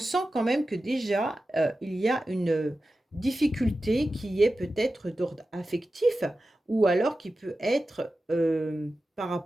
quand même que déjà, il y a une difficulté qui est peut-être d'ordre affectif ou alors qui peut être par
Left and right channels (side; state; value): both; normal; correlation 0.93